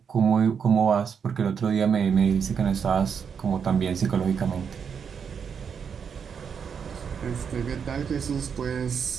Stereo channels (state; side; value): quieter; left; 6.8 dB